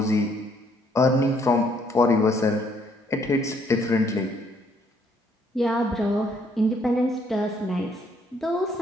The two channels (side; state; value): both; normal; correlation 0.67